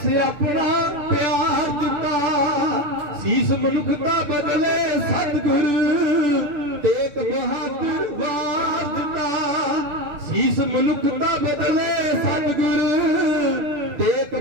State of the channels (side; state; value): left; late; 6.8 ms